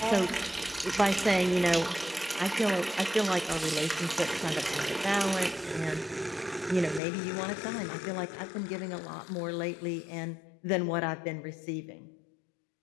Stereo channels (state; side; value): drops out; right; at 7.0 s